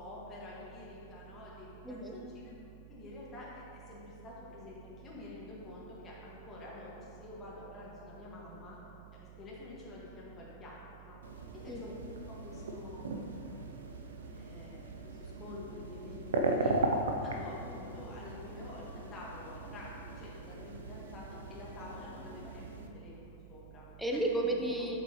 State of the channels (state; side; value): noise; right; hum, 14 dB below the sound